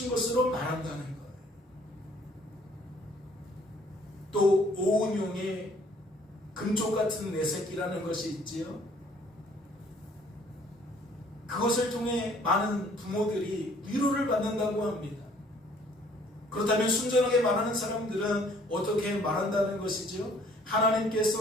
것으로 말한다는 거예요. 또 오은용의 금쪽 같은 내 새끼라는 것이 있지요. 그것을 통해 많은 부모들이 위로를 받는다고 합니다. 그렇다면 순전하게 말하는 사람들은 어떻게 말한다는 것이죠?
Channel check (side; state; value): both; normal; correlation 0.59